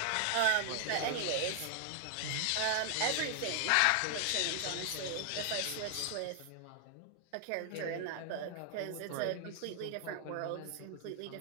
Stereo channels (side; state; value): both; different; correlation 0.00